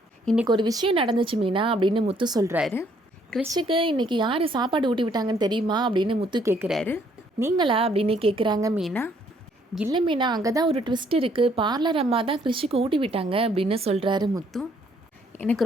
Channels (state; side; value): normal; both; correlation 0.66